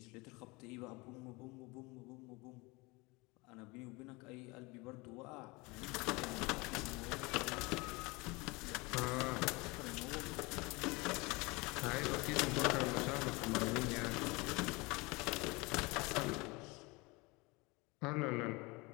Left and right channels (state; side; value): quieter; right; 25.3 dB